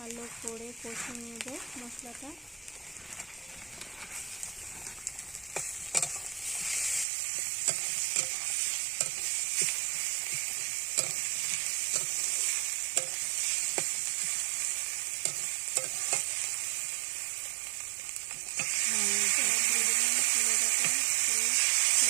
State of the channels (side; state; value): left; drops out; at 7.1 s